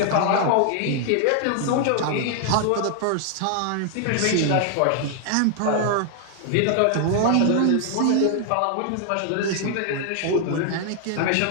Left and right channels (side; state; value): both; different; correlation 0.00